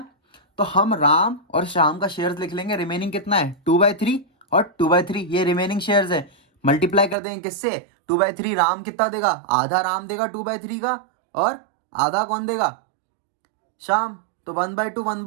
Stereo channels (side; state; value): left; drops out; at 7.2 s